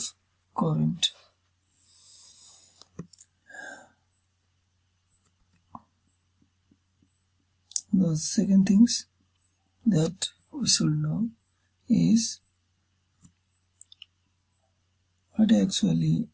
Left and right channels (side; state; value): both; identical; correlation 1.00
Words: current. The second things that we should know is what actually